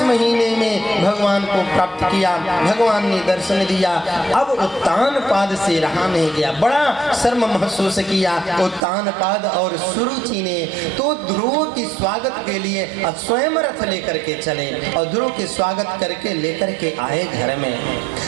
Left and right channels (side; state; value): left; drops out; at 8.8 s